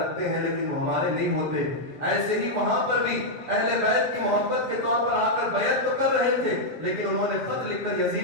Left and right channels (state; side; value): late; left; 7.4 ms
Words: رکھتے ہیں لیکن وہ ہمارے نہیں ہوتے۔ ایسے ہی وہاں پر بھی اہل بیت کی محبت کے طور پر آ کر بیعت تو کر رہے تھے، لیکن انہوں نے خط لکھ کر